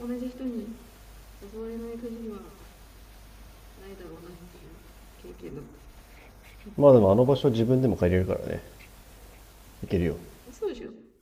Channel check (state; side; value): identical; both; correlation 1.00